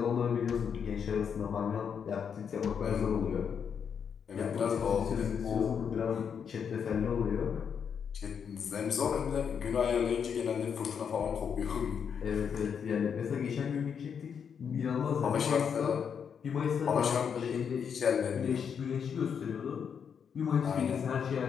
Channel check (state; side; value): quieter; right; 7.2 dB